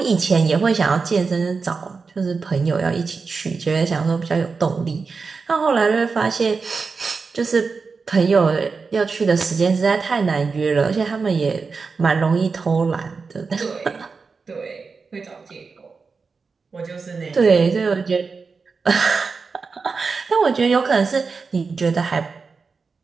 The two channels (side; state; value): left; quieter; 4.8 dB